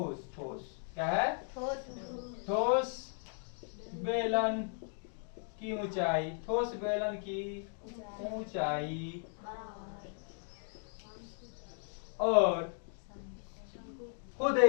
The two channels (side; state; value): right; silent; 54 dB below the other